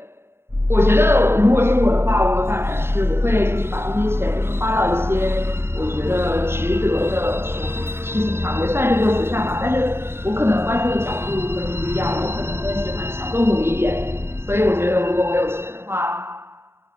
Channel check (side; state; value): left; late; 0.12 ms